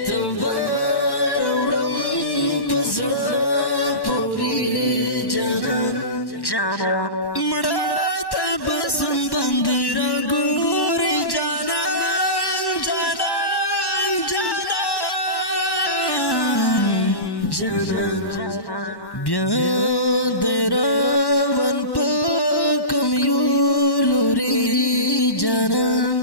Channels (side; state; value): right; late; 1.1 ms